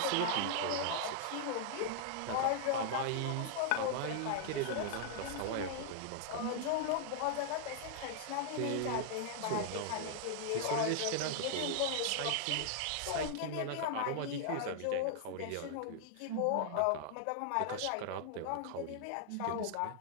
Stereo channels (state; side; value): different; both; correlation 0.00